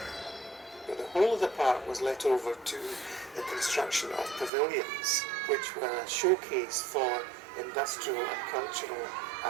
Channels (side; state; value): left; drops out; at 4.5 s